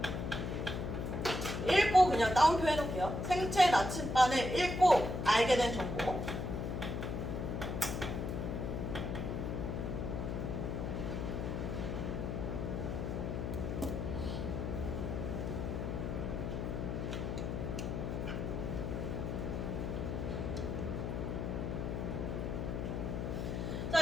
나침반을 읽고 알게 된 정보.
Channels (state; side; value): noise; left; hum, 2 dB below the sound